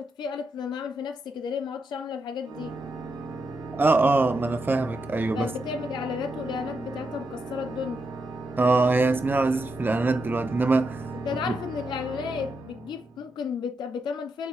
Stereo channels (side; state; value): both; normal; correlation 0.83